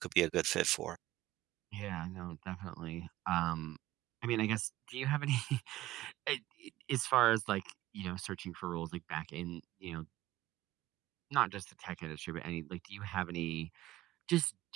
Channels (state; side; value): quieter; left; 16.1 dB